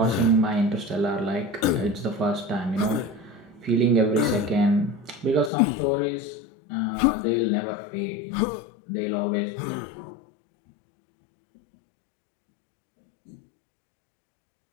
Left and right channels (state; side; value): drops out; right; at 5.5 s